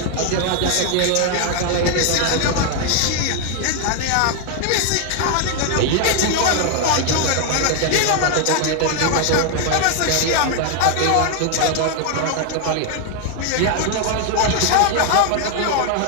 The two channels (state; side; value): different; both; correlation 0.01